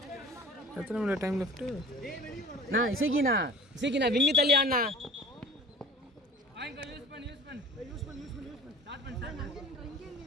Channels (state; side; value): normal; both; correlation 0.43